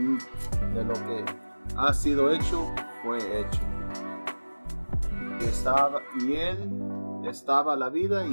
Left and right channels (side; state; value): both; inverted; correlation -1.00